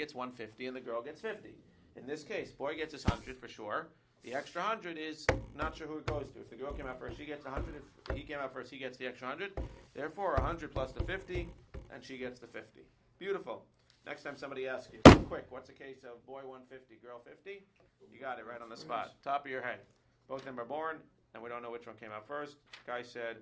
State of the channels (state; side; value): identical; both; correlation 1.00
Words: 150 and the girl gets 50. In this case, boy gets his 100 for sure. The extra 100 is not sure who it goes to. If the girl came out first, she gets 100. If he came out first, he gets the extra 100. Therefore, 100 plus the 50, and she gets the 50. Beautiful. Next time somebody asks you, quick, what's the case of boy 150, girl 50? You got it right on the spot. Top of your head. Both of them are born, and we don't know which one came out first. Guy said,